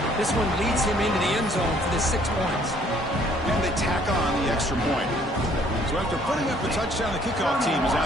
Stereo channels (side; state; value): both; normal; correlation 0.61